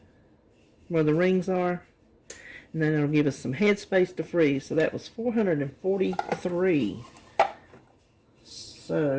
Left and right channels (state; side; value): identical; both; correlation 1.00